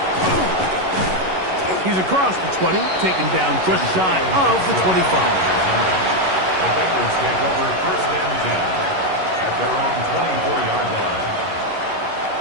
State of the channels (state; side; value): late; left; 11 ms